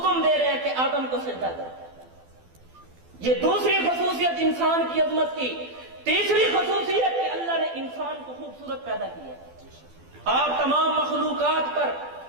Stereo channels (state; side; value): late; left; 12 ms